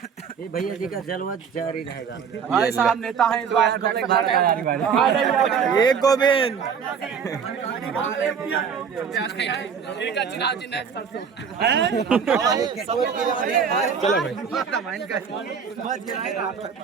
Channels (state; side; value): quieter; left; 6.7 dB